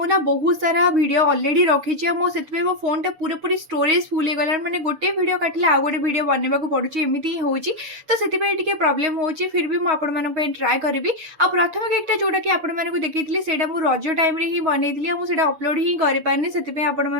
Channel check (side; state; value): left; late; 6.8 ms